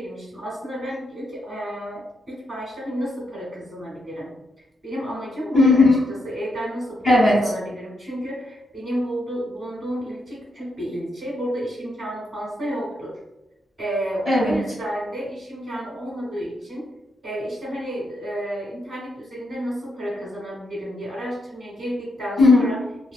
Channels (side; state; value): both; normal; correlation 0.80